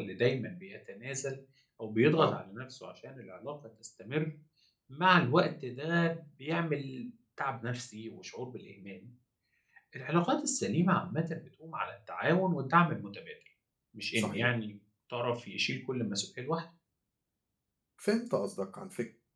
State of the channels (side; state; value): both; identical; correlation 1.00